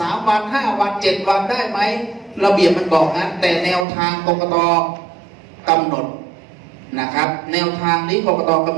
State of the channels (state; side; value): drops out; left; at 3.9 s